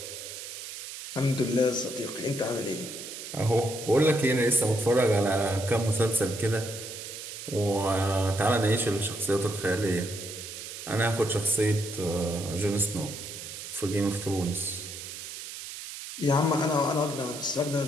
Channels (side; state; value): right; noise; hiss, 10 dB below the sound